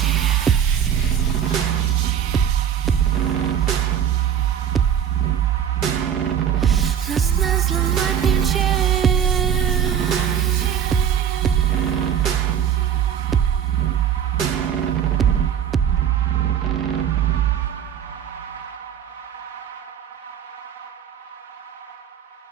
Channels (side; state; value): left; quieter; 8.9 dB